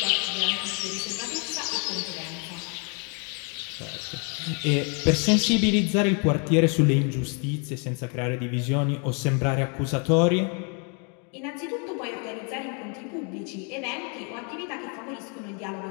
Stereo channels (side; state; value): right; quieter; 36.9 dB